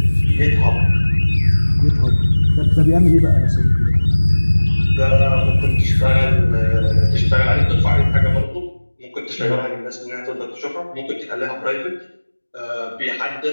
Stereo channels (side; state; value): both; inverted; correlation -1.00